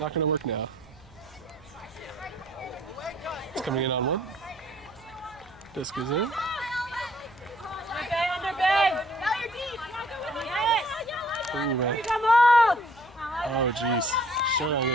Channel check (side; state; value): left; noise; hum, 25 dB below the sound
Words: not going to work now. It's coming in on one. Disc is in. Underbay, underbay. Now you're deep. Yes. Ooh, man. Come on. Oh, jeez. Showdown